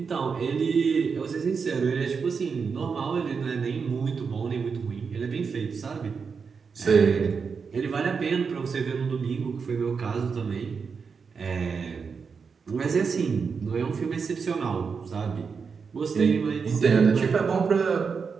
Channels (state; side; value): quieter; left; 5.6 dB